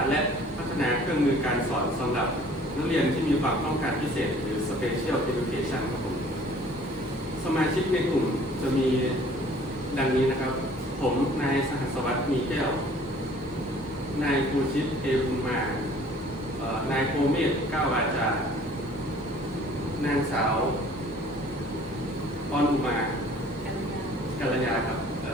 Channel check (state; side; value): normal; both; correlation 0.52